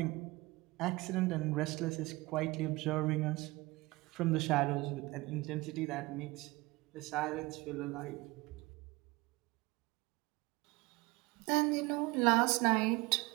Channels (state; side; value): quieter; left; 22.2 dB